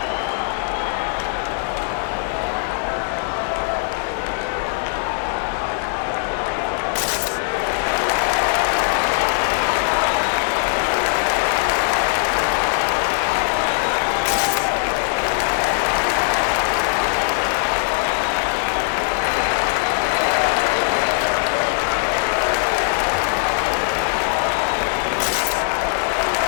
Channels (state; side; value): silent; right; digital silence